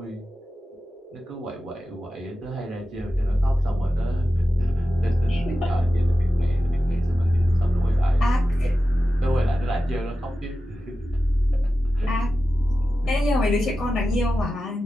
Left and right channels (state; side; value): normal; both; correlation 0.93